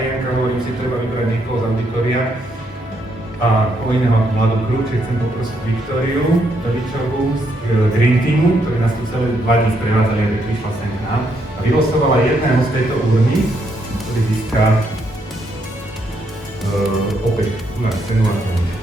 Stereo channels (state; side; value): normal; both; correlation 0.76